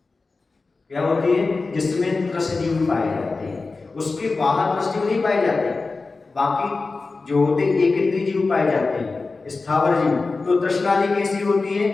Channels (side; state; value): right; quieter; 3.9 dB